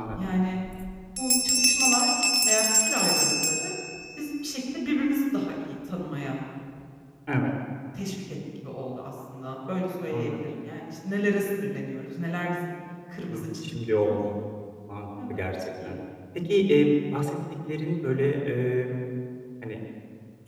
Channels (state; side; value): identical; both; correlation 1.00